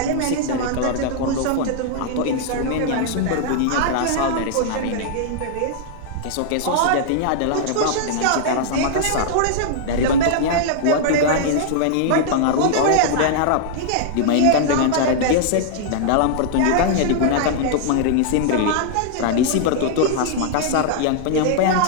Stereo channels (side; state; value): both; different; correlation -0.01